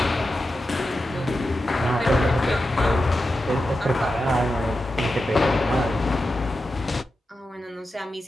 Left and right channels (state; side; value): normal; both; correlation 0.90